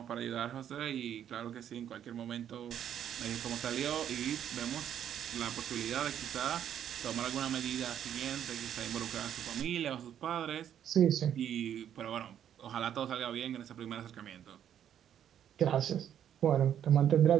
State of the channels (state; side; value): quieter; left; 9.8 dB